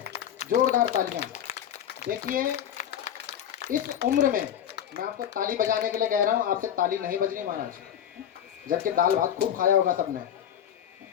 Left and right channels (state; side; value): quieter; right; 9.9 dB